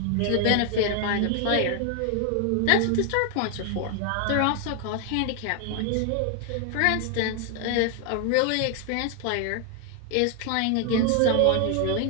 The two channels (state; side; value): different; both; correlation 0.00